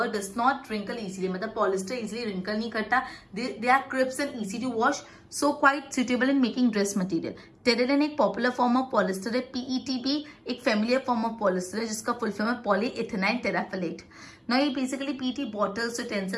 does not wrinkle easily, मतलब पॉलिस्टर इजीली रिंकल नहीं करता। They are crisp and easy to wash, so quite suitable in making dress material. Terylene एक popular form of polyester है। PET भी एक familiar form of polyester है जिसका full form है पॉलीइथेनाइल टेराफिलेट। ना ये basically PET bottles,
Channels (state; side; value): identical; both; correlation 1.00